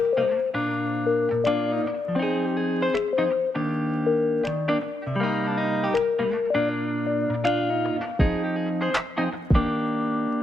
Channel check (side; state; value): both; normal; correlation 0.84